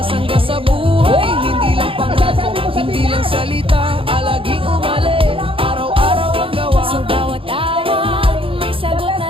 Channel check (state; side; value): late; left; 0.26 ms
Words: sa buhay, hindi lang pangako, hindi lang salita. Alaging umali, araw-araw ang gawa. Sa bawat awag, may sagot na